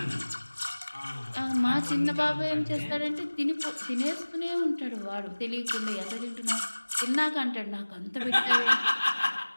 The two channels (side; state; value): both; inverted; correlation -1.00